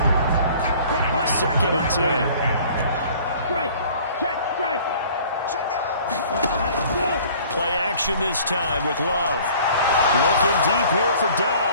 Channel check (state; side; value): inverted; both; correlation -0.51